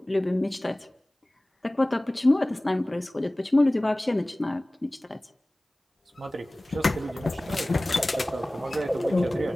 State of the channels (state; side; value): normal; both; correlation 0.98